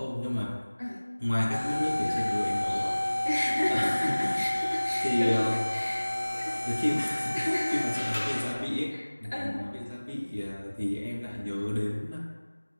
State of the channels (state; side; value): inverted; both; correlation -1.00